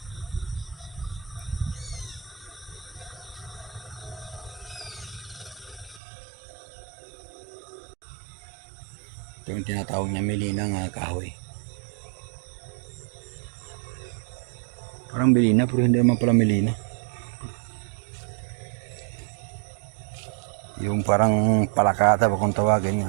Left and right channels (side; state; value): left; drops out; at 6.0 s